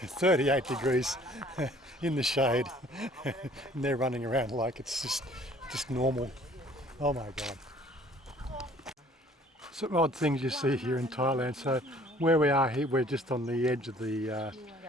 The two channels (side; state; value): both; normal; correlation 0.55